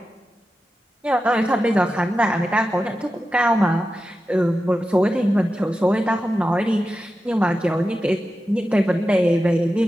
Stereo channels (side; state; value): both; normal; correlation 0.92